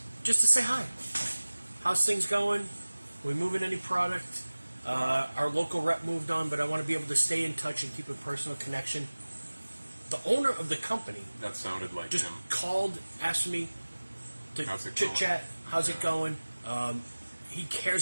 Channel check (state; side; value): inverted; both; correlation -1.00